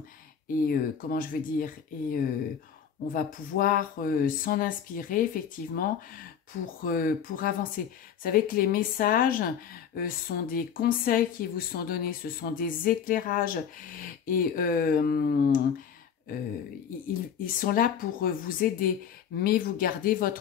comment je veux dire, on va pouvoir s'en inspirer effectivement pour avancer. Vous savez que les messages sont des conseils qui vous sont donnés, ce sont des éclairages et ils sont là pour vous aider, mais vous gardez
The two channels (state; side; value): quieter; right; 7.9 dB